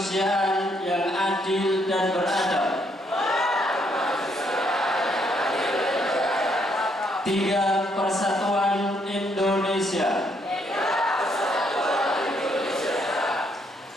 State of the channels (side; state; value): both; normal; correlation 0.72